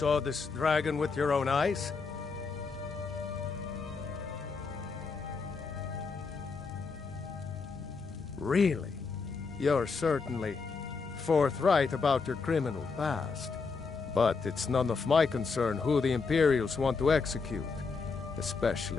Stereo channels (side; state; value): right; quieter; 4.7 dB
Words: this dragon with your own eyes? Really? You're certainly forthright about your criminal past. But it's none of my concern who the Imperials want to execute,